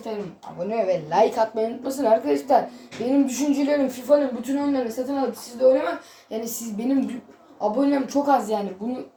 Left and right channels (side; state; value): both; identical; correlation 1.00